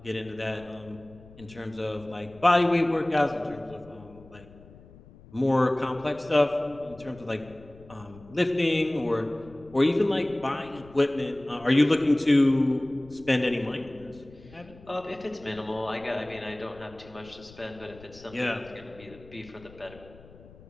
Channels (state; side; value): noise; left; rumble, 22 dB below the sound